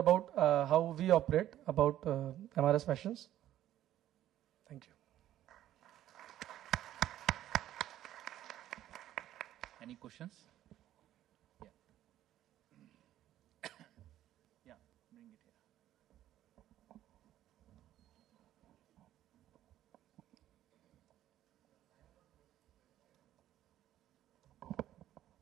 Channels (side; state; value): left; quieter; 12.7 dB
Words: how we operate, about MRS Fashions. Thank you. Any questions? Yeah. Yeah, bring it here.